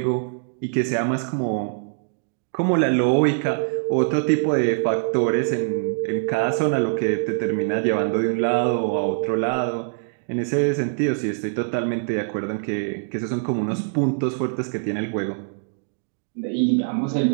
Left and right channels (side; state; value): left; silent; digital silence